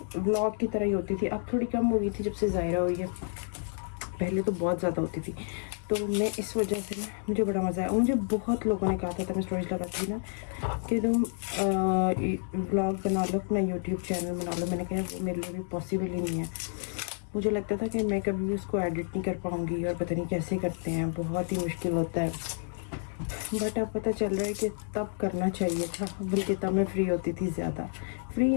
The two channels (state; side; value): silent; right; 58 dB below the other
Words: व्लॉग की तरह ही होती थी। अब थोड़ी कम हो गई थी जब से ज़ायरा हुई है, पहले तो बहुत ज़्यादा होती थी। तो मैं इस वजह से ना मुझे बड़ा मज़ा आया। मुझे बहुत लोगों ने कहा था मैं स्टोरीज लगाती थी ना कि तुम व्लॉग बना लो, अपना यूट्यूब चैनल बना लो। मैंने कहा वो मेरे लिए भी पॉसिबल ही नहीं है। मुझे लगता था कि मैं कभी भी उसको एडिट नहीं कर पाऊँगी और पता नहीं कैसे करते हैं, बहुत ही मुश्किल होता है। बट अब पता चल रहा है कि तब करना चाहिए था, बल्कि तब मैं फ्री होती थी ज़्यादा। फ्री